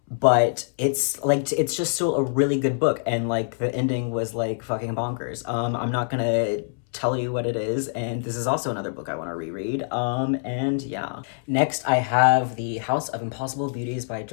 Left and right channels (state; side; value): silent; right; 62 dB below the other